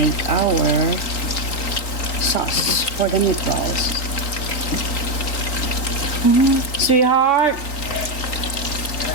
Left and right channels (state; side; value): late; right; 3.7 ms